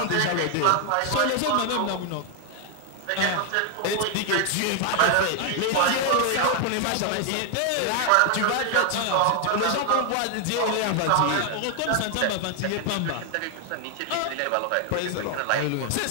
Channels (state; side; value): different; both; correlation 0.00